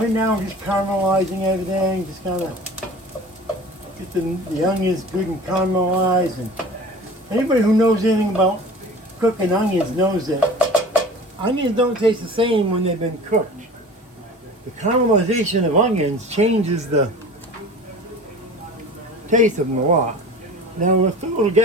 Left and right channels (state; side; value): normal; both; correlation 0.40